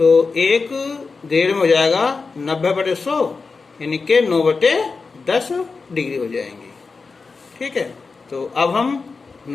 1 ग्रेड में हो जाएगा 90 बटे 100 यानी कि 9 बटे 10 डिग्री हो जाएंगी, ठीक है। तो अब हम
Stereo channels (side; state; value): right; quieter; 4.4 dB